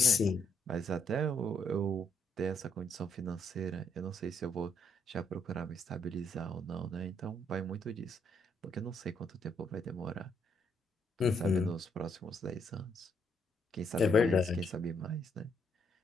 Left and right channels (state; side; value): normal; both; correlation 0.73